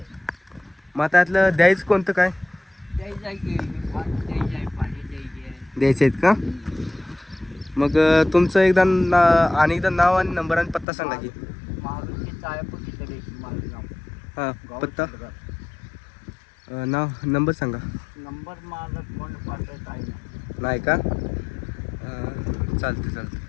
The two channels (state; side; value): drops out; right; at 10.9 s